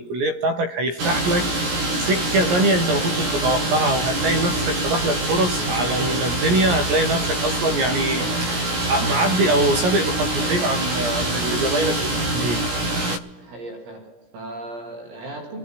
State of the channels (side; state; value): left; late; 17 ms